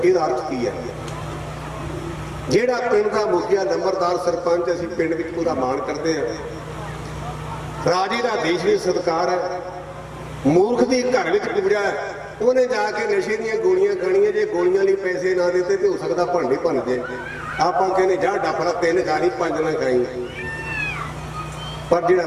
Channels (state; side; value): identical; both; correlation 1.00